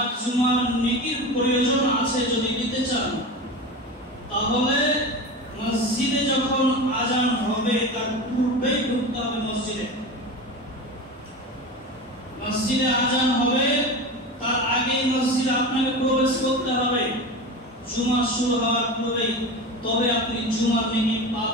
জুমার নেকির প্রয়োজন আছে যদি দিতে চান, তাহলে মসজিদে যখন আজান হবে তার পূর্বেই ঢুকতে হবে। মসজিদে আজান হবে তার আগে মসজিদে আপনাকে প্রবেশ করতে হবে জুমা শুরু হওয়ার পূর্বেই, তবে আপনি জুমার নেকি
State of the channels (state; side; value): normal; both; correlation 0.27